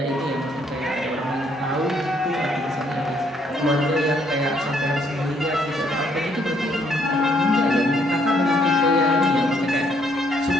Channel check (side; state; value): both; normal; correlation 0.68